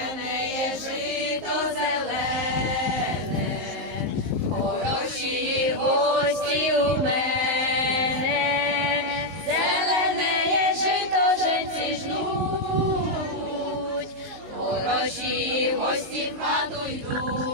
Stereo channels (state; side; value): late; left; 19 ms